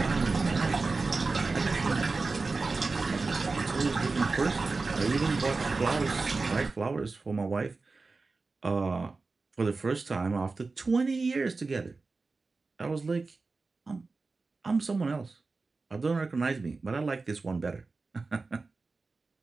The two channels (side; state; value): left; quieter; 3.9 dB